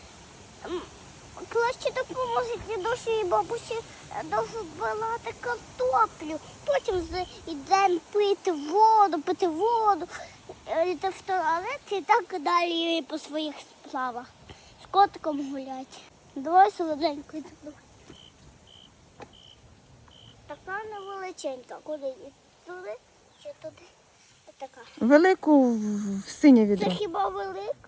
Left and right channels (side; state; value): both; identical; correlation 1.00